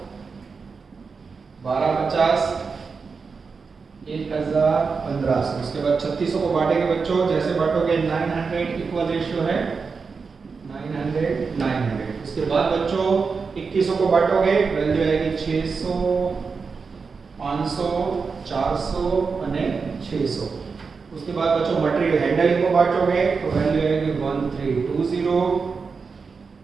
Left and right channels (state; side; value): quieter; left; 5.0 dB